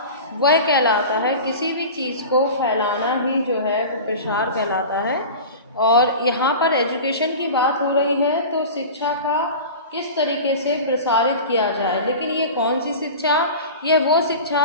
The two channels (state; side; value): inverted; both; correlation -0.33